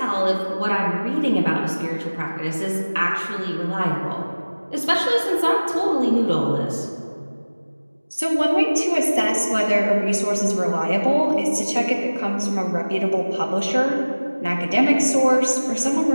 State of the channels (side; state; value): both; inverted; correlation -1.00